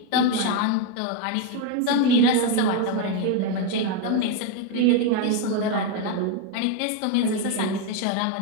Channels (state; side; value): different; both; correlation 0.01